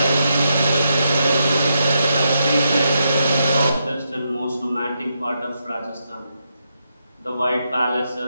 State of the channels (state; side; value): inverted; both; correlation -0.82